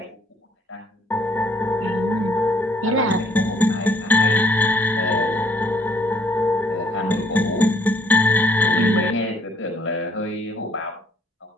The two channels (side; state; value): both; normal; correlation 0.64